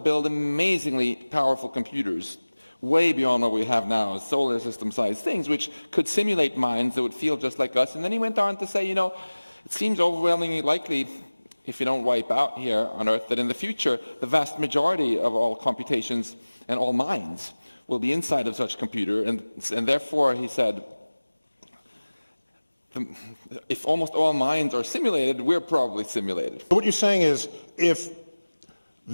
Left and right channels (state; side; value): inverted; both; correlation -1.00